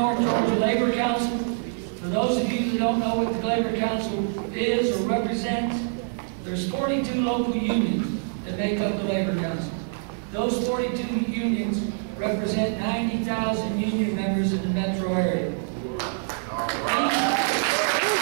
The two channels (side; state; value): left; silent; digital silence